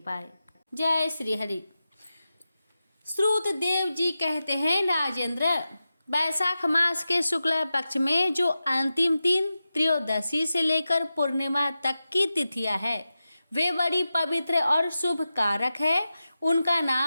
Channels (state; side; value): inverted; both; correlation -0.92